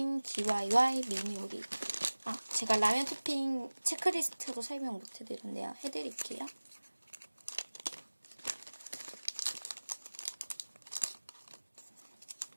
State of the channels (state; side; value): inverted; both; correlation -1.00